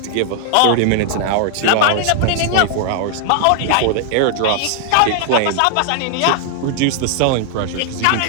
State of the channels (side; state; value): both; different; correlation 0.00